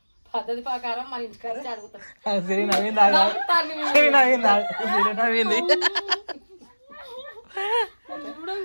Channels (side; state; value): both; inverted; correlation -1.00